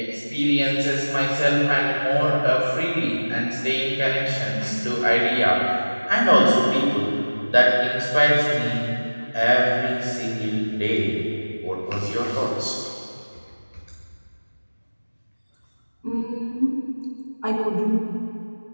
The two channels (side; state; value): both; inverted; correlation -1.00